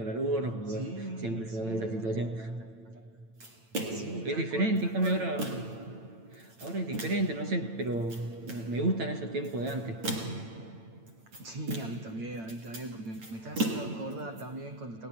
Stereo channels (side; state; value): left; late; 8.9 ms